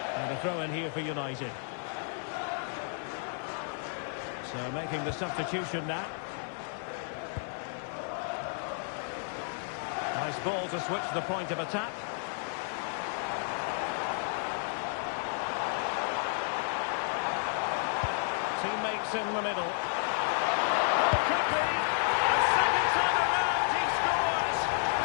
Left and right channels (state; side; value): silent; right; 57 dB below the other